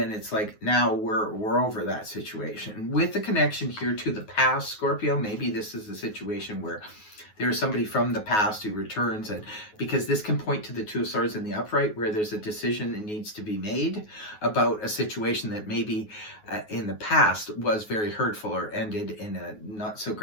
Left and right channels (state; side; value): late; right; 9.4 ms